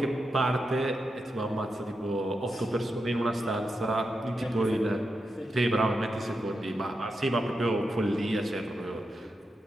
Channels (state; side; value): normal; both; correlation 0.87